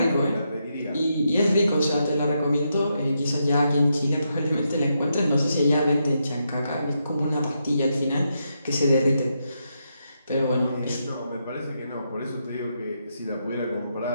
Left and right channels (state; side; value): inverted; both; correlation -0.82